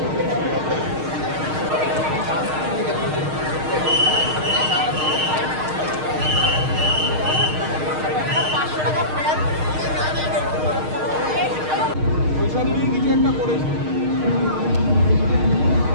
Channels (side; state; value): left; late; 6.5 ms